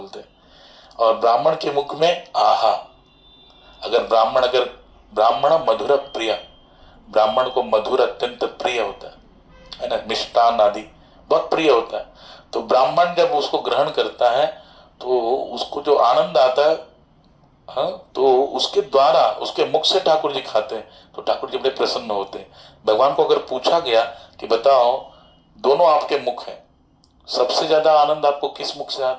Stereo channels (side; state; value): both; identical; correlation 1.00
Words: हैं। और ब्राह्मण के मुख में आहा। अगर ब्राह्मण मधुर प्रिय, ब्राह्मण को मधुर अत्यंत प्रिय होता है ना, मिष्टान आदि बहुत प्रिय होता है। तो ब्राह्मण जब उसको ग्रहण करता है तो उसको जो आनंद आता है, हाँ, तो उसके द्वारा उसके मुख से ठाकुर जी खाते हैं तो ठाकुर जी बड़े प्रसन्न होते हैं। भगवान को अगर पूछा गया कि बताओ दोनों आपके मुख हैं, सबसे ज्यादा आनंद आपको किस मुख से